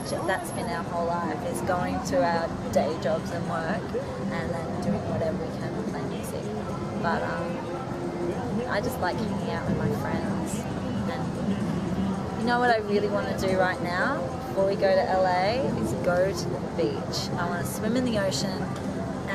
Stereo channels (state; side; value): identical; both; correlation 1.00